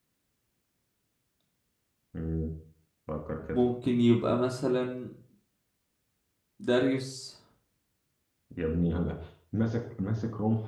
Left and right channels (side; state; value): both; identical; correlation 1.00